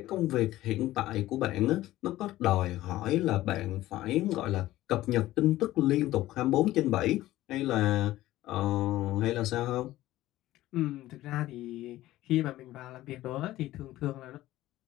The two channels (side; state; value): right; quieter; 15.7 dB